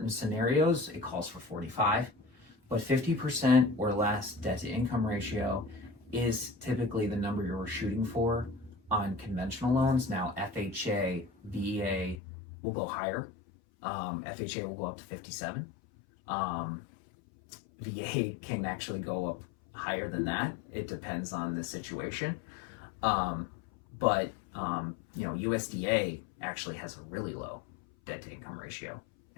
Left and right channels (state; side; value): drops out; right; at 12.2 s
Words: scenarios, it calls for 45, but 50% or less debt to income ratio is typically the number you're shooting for on conventional loans. Now, FHA, VA will go higher. FHA will go up to 57. VA can actually go up higher than that. It depends on the situation. But USDA actually has a really low debt to income ratio,